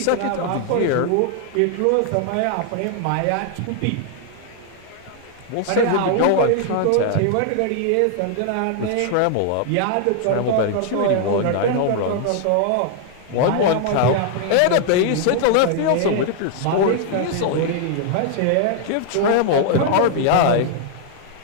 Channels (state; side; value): different; both; correlation 0.00